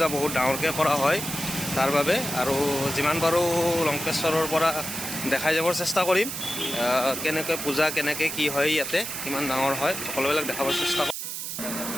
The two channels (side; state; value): right; noise; hiss, 5 dB below the sound